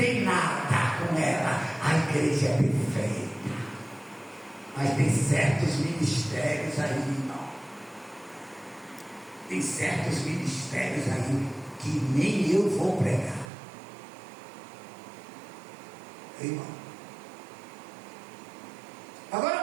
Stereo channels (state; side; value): drops out; left; at 13.5 s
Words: nada com ela. A igreja é perfeita. Mas tem certos ministérios aí, irmão. Tem certos ministérios aí que nem eu vou pregar. Irmão.